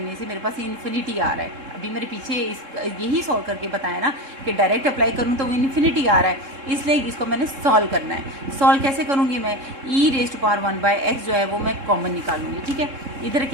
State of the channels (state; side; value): late; left; 3.7 ms